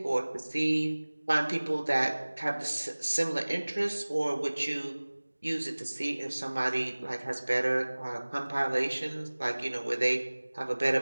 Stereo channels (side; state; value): both; inverted; correlation -1.00